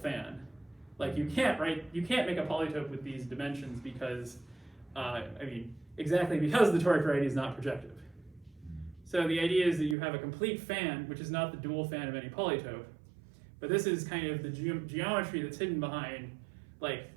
You can't make a polytope with these dimensions because, exactly because the toric variety is not projective. So the idea is that you have a complete fan, which is not the dual fan of any polytope, but this is kind of the geometry that's hidden behind,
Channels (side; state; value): left; drops out; at 10.0 s